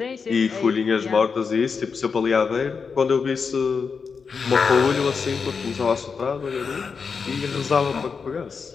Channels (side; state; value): right; quieter; 5.5 dB